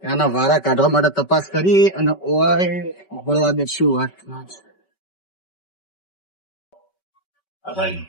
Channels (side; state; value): right; late; 5.2 ms